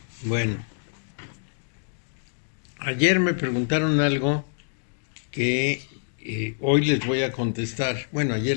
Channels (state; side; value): silent; right; digital silence